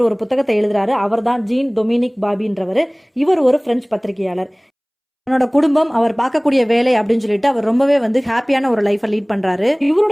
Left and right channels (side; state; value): both; identical; correlation 1.00